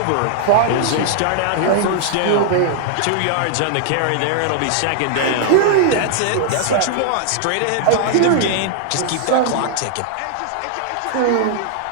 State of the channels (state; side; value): different; both; correlation -0.01